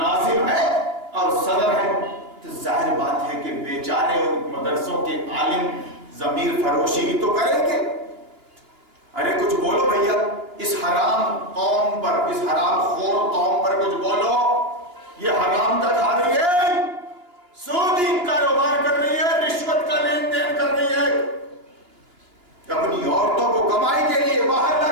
ہے اور صدر ہے. تو ظاہر بات ہے کہ بیچارے ان مدرسوں کے عالم ضمیر فروشی ہی تو کریں گے. ارے کچھ بولو بھیا، اس حرام قوم پر، اس حرام خور قوم پر کچھ بولو. یہ حرام کا کھا رہی ہے، سودی کاروبار کر رہی ہے، رشوت کا لین دین کر رہی ہے، اپنی عورتوں کو کمائی کے لیے باہر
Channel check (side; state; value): left; late; 2.8 ms